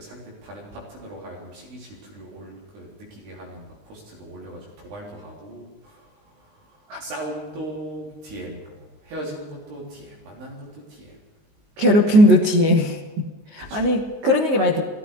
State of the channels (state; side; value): late; left; 19 ms